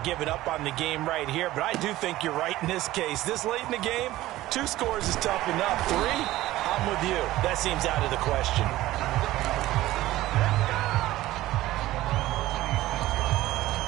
up on the game right here, but I do think you're right in this case. This late in the game, 2 scores is tough enough. 3, I'm with you. That seems out of the question.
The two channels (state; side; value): quieter; left; 16.2 dB